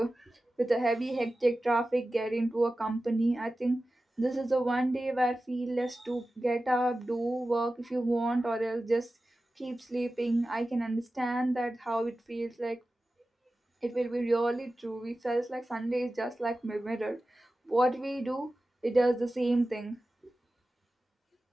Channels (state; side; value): normal; both; correlation 0.94